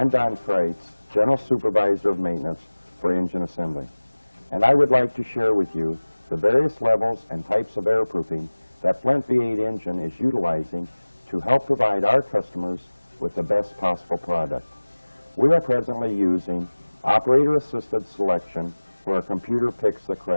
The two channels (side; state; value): both; inverted; correlation -1.00